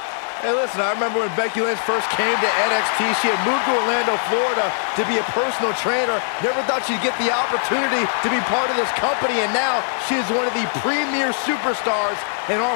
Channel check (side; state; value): right; silent; 64 dB below the other